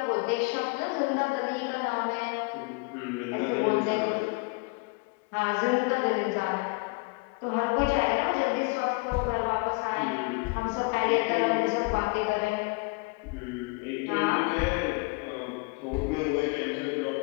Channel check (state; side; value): quieter; right; 29.3 dB